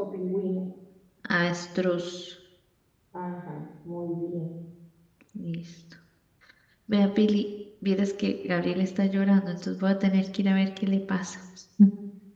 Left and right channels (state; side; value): identical; both; correlation 1.00